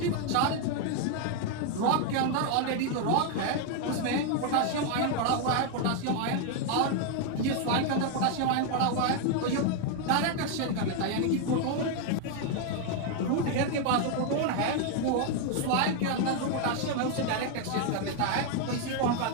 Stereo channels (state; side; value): different; both; correlation 0.01